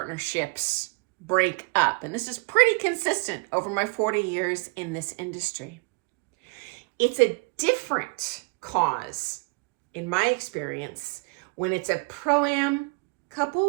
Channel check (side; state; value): left; quieter; 30.7 dB